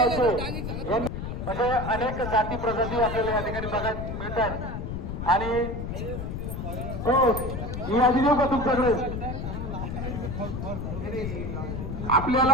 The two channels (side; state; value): left; noise; rumble, 5 dB below the sound